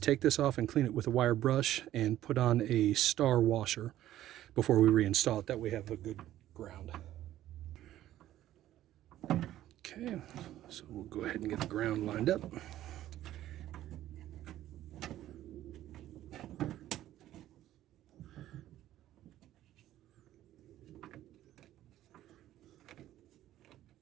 this off and clean it with a wire brush and put on a star washer before we reinstall it. That way we have a good ground. Okay, so we'll go ahead and get the ground lined up.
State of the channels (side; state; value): left; quieter; 13.4 dB